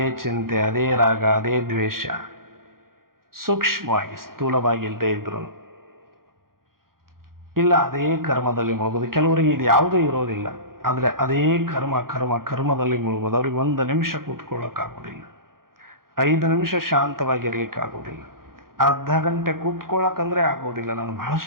ಚಿಂತೆ, ಅದೇ ರಾಗ, ಅದೇ ದ್ವೇಷ, ಸೂಕ್ಷ್ಮವಾಗಿ ಸ್ಥೂಲವಾಗಿ ಇಲ್ಲದೆ ಇದ್ರು ಇಲ್ಲ ಅದೇ ಕರ್ಮದಲ್ಲಿ ಮುಳುಗೋದು. ಕೆಲವರಿಗೆ ಇದು ಯಾವುದೂ ಇರೋದಿಲ್ಲ, ಆದರೆ ಅದೇ ಕರ್ಮದಲ್ಲಿ ಮುಳುಗೋದು. ಅವ್ರಿಗೆ 1 ನಿಮಿಷ ಕೂತ್ಕೊಳ್ಳೋಕ್ಕಾಗೋದಿಲ್ಲ, 5 ನಿಮಿಷ ಶಾಂತವಾಗಿರ್ಲಿಕ್ಕಾಗೋದಿಲ್ಲ, ಅರ್ಧ ಗಂಟೆ ಕೂತ್ಕೊಳ್ಳೋಕಂದ್ರೆ ಆಗೋದಿಲ್ಲ. ನಾನು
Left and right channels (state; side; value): late; left; 0.92 ms